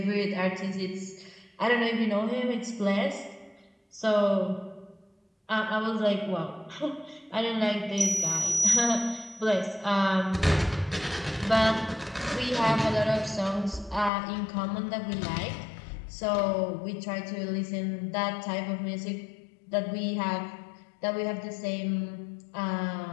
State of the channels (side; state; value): right; drops out; at 14.1 s